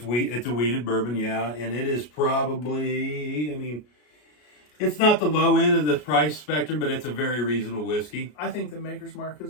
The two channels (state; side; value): late; right; 33 ms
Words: a wheated bourbon, yeah, and it is probably, I mean, it's not the low end of the price spectrum, but it's a very reasonable whiskey. I think the Maker's Mark